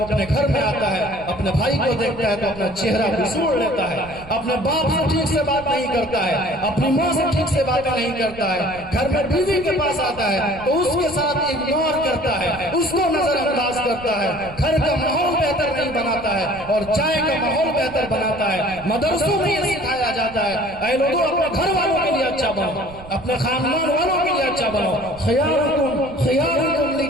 اپنے گھر میں آتا ہے، اپنے بھائی کو دیکھتا ہے تو اپنا چہرہ بسوڑ لیتا ہے، اپنے باپ سے ٹھیک سے بات نہیں کرتا ہے، اپنی ماں سے ٹھیک سے باتیں نہیں کرتا ہے، گھر میں بیوی کے پاس آتا ہے تو اس کے ساتھ اگنور کرتا ہے، اس کو نظر انداز کرتا ہے، گھر کا ماحول بہتر نہیں بناتا ہے اور چائے کا ماحول بہتر بناتا ہے۔ مدرسوں میں یہ سکھایا جاتا ہے اے لوگوں اپنے گھر والوں کے لیے اچھا بنو، اپنے خاندان والوں کے لیے اچھا بنو۔ خیارکم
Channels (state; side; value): noise; right; rumble, 18 dB below the sound